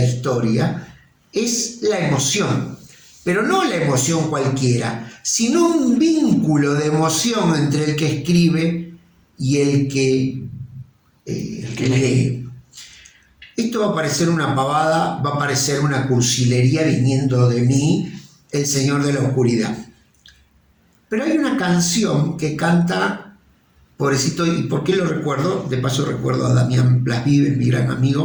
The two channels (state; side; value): identical; both; correlation 1.00